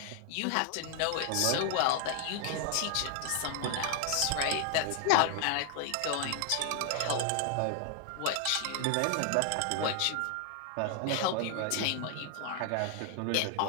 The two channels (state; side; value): different; both; correlation 0.00